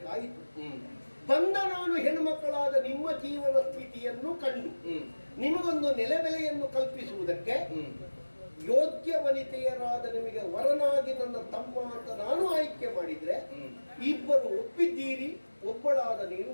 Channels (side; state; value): both; inverted; correlation -1.00